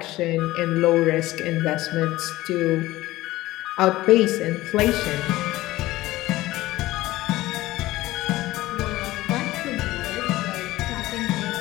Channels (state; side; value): quieter; right; 17.5 dB